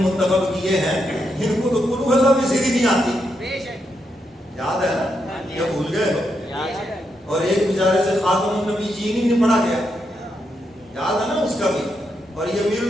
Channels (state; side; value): normal; both; correlation 0.82